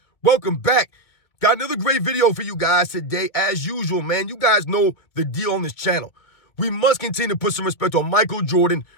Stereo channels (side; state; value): right; late; 2.2 ms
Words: Welcome back. Got another great video for you guys today. As usual, man, you guys know the deal on this channel. We must continue to put some respect on Michael Jordan.